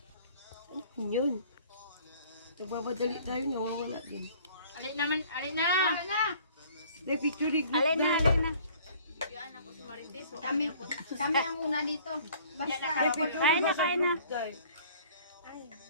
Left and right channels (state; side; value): inverted; both; correlation -0.53